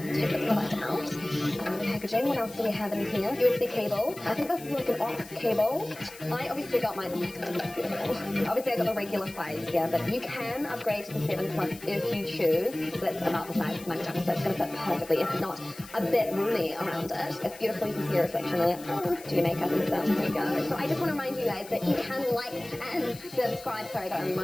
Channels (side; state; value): left; noise; hiss, 18 dB below the sound